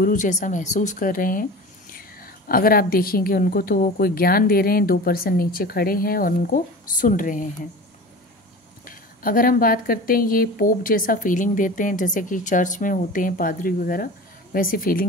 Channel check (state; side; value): normal; both; correlation 0.35